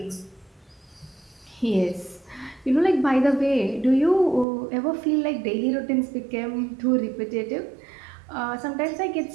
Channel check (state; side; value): drops out; left; at 4.5 s